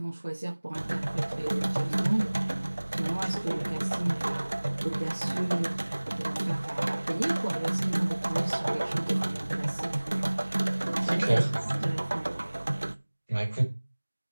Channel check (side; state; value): both; inverted; correlation -1.00